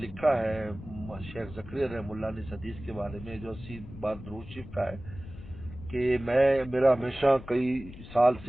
ہے شیخ زکریا رحمہ اللہ نے اس حدیث کے بارے میں جو 80 بار درود شریف کا ہے, کہ میرا ہمیشہ کئی سال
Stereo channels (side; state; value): left; noise; rumble, 14 dB below the sound